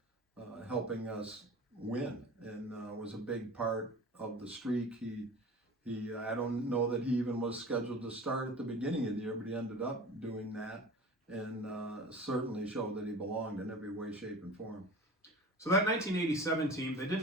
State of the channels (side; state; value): both; normal; correlation 0.38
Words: helping us win, and was a big part of the streak. I don't know that he even was scheduled to start at the beginning of the year, but he ended up doing that, and certainly showed that he belonged in every way, shape, and form. So that 1987 team, they